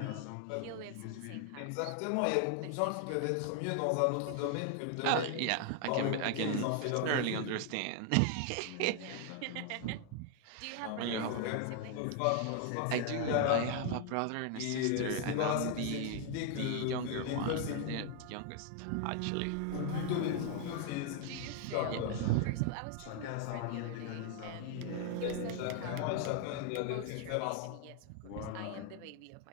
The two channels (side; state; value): both; different; correlation 0.00